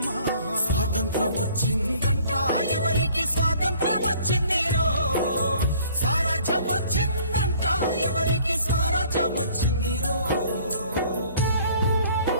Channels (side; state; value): both; inverted; correlation -0.55